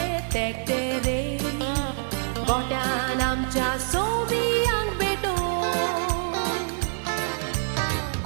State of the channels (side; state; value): left; silent; digital silence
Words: तेकटे रे गोट्यान आमच्या सोमियांक भेटोवन